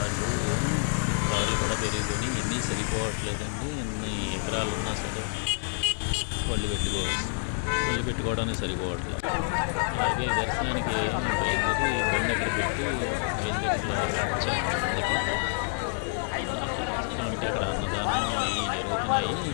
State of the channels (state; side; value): silent; right; digital silence